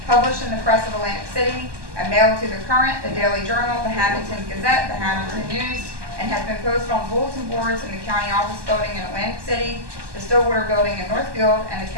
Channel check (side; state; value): left; late; 1.2 ms